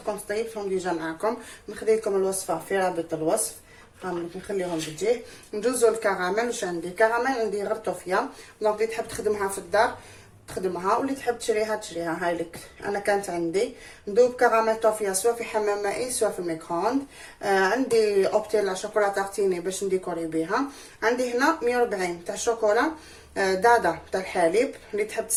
كنت طيبتهم ديجا معاكم، نخلي لكم الوصفه في رابط الوصف، نخليهم بالجيه. ندوزو الكراميل. واش عندي؟ كراميل عندي غير طوفيه، دونك اللي تحب تخدمها في الدار تخدمها، واللي تحب تشريها تشريها. هاي لك انا كانت عندي ندوب كراميل طوفيه سواء في حمام مائي سواء في الميكرووند. عندي اوبتيلا شوكولا تارتيني باش نديكوري بها. عندي هنا 140 تاع شوكولا دادا تاع الحليب، اللي تحب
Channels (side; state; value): both; identical; correlation 1.00